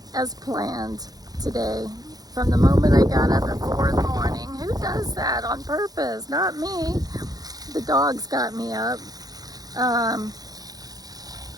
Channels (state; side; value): late; left; 0.18 ms